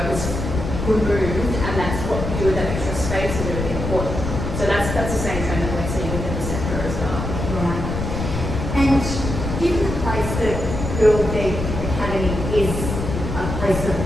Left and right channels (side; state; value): left; noise; rumble, 4 dB below the sound